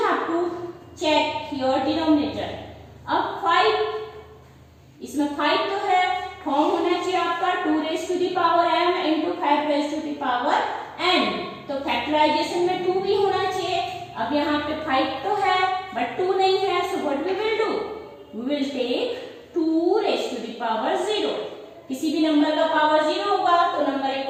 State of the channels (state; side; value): identical; both; correlation 1.00